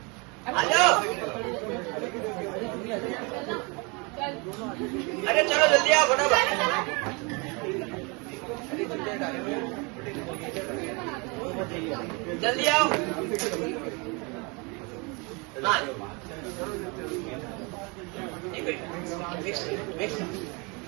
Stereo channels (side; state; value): left; quieter; 30.0 dB